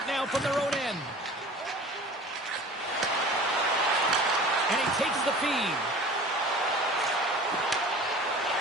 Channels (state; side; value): normal; both; correlation 0.42